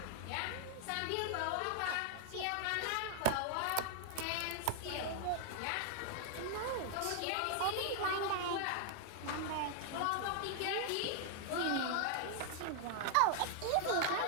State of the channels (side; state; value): both; different; correlation 0.00